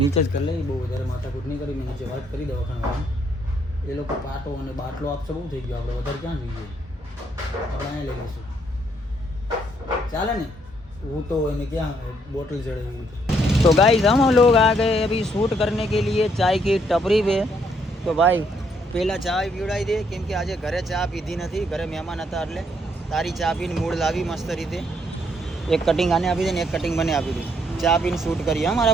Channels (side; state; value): both; normal; correlation 0.71